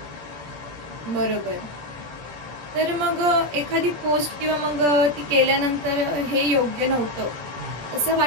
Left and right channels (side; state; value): left; late; 17 ms